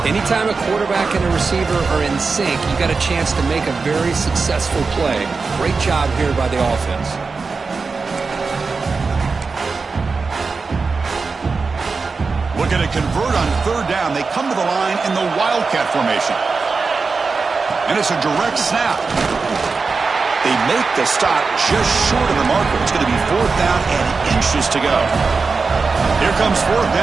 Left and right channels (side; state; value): left; quieter; 4.5 dB